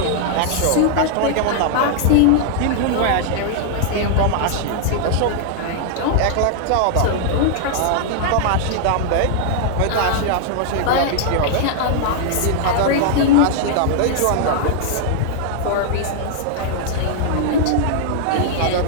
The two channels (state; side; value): different; both; correlation -0.01